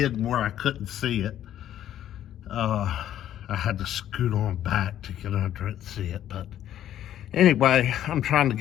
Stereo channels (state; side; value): quieter; right; 11.5 dB